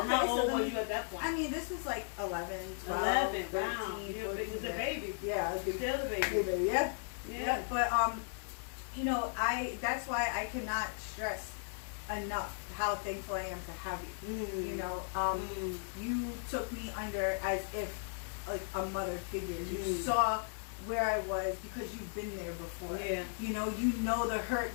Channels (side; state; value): right; silent; 54 dB below the other